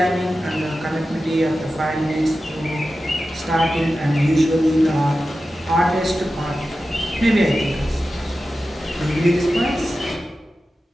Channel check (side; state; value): both; normal; correlation 0.93